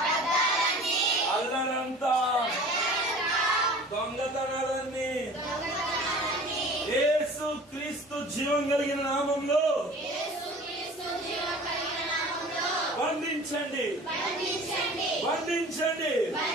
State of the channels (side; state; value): both; normal; correlation 0.43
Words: అల్లరంతా, దొంగతనాలన్నీ యేసు క్రీస్తు జీవం కలిగిన నామంలో బంధించండి, బంధించండి.